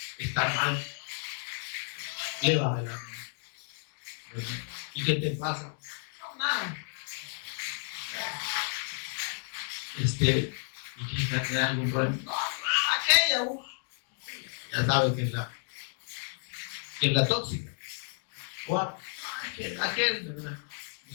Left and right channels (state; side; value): silent; right; 57 dB below the other